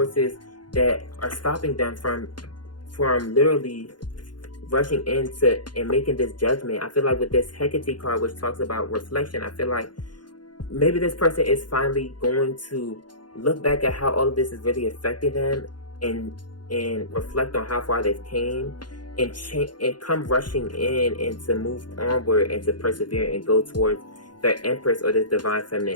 that are stopping them from literally rushing into and making this judgment. I feel like with this Hecate card, which talks about reflection, I feel like maybe this person is finally going to look back at how all of this is really affecting them and reflect on how far they've came and come rushing in and to move onward and to persevere and go towards their Empress or this divine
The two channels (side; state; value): right; late; 0.71 ms